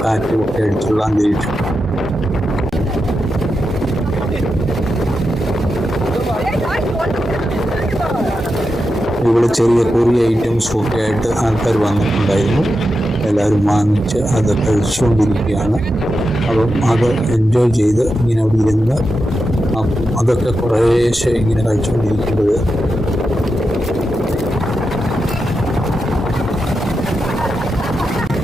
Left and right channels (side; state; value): both; normal; correlation 0.88